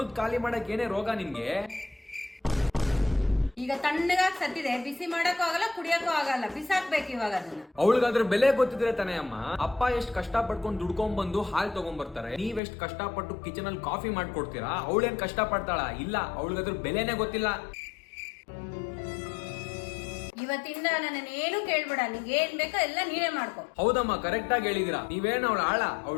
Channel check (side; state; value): right; drops out; at 12.6 s